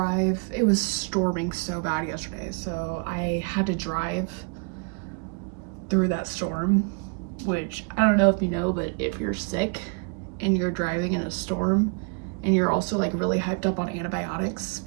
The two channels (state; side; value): quieter; left; 34.4 dB